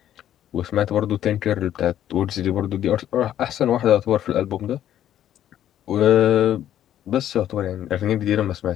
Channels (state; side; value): quieter; right; 11.3 dB